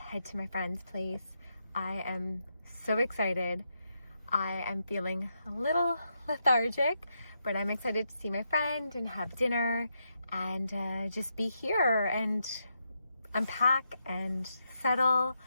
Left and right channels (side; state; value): both; inverted; correlation -0.82